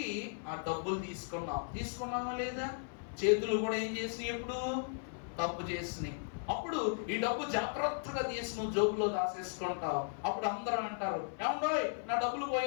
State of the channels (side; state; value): right; silent; 54 dB below the other